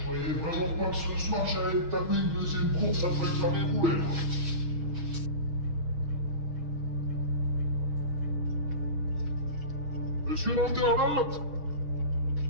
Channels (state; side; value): late; left; 6.3 ms